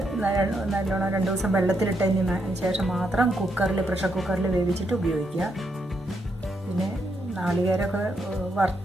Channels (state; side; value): normal; both; correlation 0.79